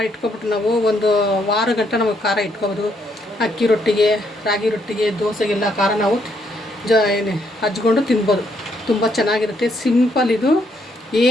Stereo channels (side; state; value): both; normal; correlation 0.73